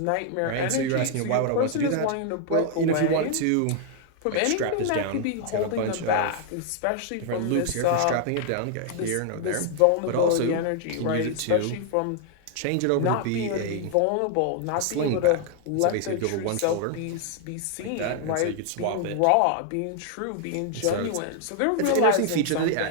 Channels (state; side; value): different; both; correlation 0.00